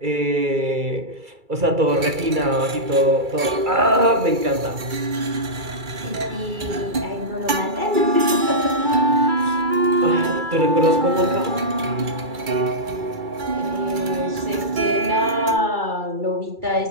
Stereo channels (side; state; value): left; late; 2.3 ms